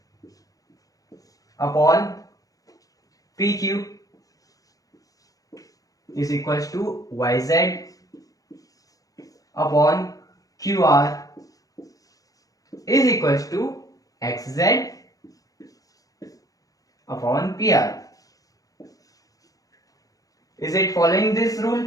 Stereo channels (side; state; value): right; late; 0.17 ms